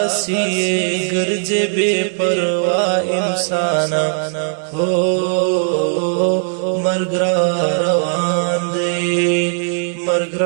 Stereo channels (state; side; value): silent; left; digital silence